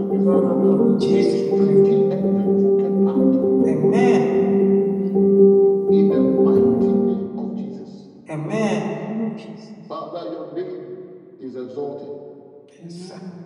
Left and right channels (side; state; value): both; identical; correlation 1.00